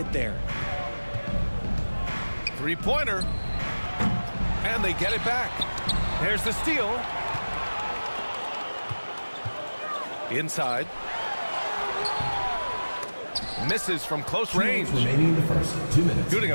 there. Three-pointer. And they get it back. There's the steal. Inside. Misses from close range. Remaining in the first 2 minutes. Shooting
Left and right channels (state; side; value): inverted; both; correlation -1.00